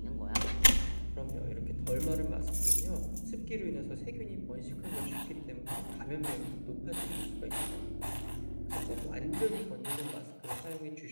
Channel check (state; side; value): inverted; both; correlation -1.00